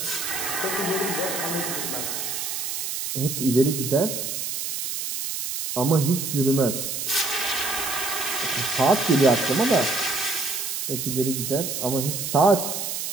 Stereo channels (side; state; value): right; noise; hiss, 3 dB below the sound